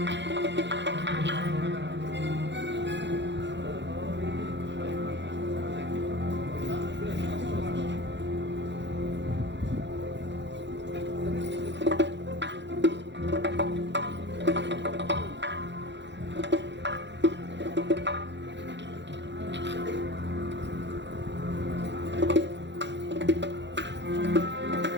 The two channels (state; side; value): late; left; 0.52 ms